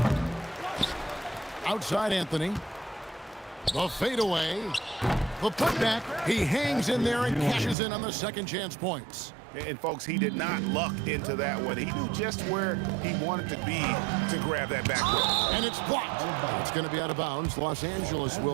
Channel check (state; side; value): drops out; left; at 7.8 s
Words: Outside Anthony. The fadeaway. The putback. He hangs in there and cashes in on the second chance points. And folks, he did not luck into that one. He knew just where he wanted to be to grab that backcourt. And it's blocked. It's going to be out of bounds. Los Angeles